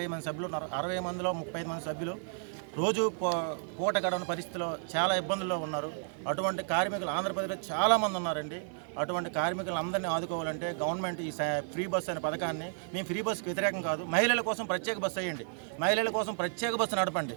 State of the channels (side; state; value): left; silent; digital silence